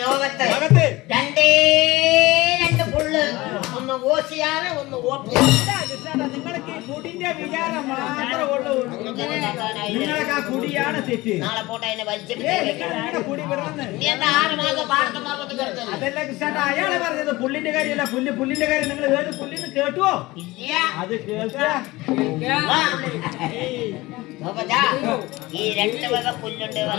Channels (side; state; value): right; quieter; 20.2 dB